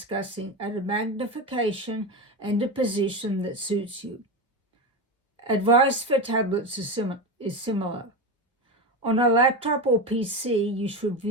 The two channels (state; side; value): normal; both; correlation 0.19